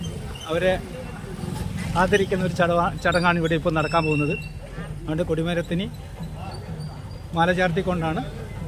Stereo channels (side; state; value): both; identical; correlation 1.00